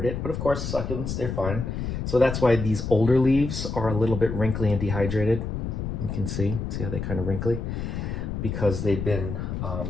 it, but of course, succulents, they're fine. So that's why these older leaves are a little bit wrinkly and dehydrated. You can see how they're kind of wrinkly, because they've been,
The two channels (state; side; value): noise; left; rumble, 4 dB below the sound